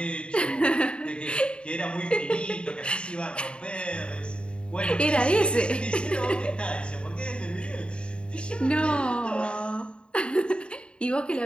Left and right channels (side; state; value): right; late; 0.054 ms